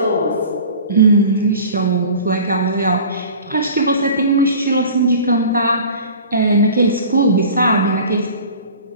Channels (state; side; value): inverted; both; correlation -0.41